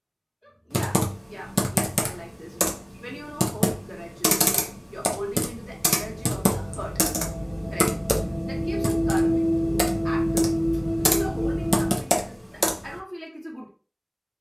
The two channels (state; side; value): identical; both; correlation 1.00